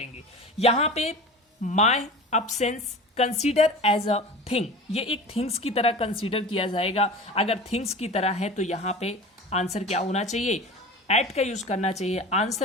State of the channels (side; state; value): both; normal; correlation 0.35